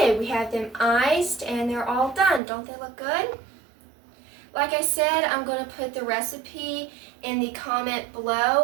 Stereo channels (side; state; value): left; drops out; at 2.4 s